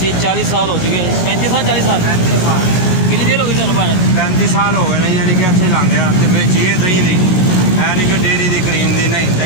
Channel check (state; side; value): late; right; 16 ms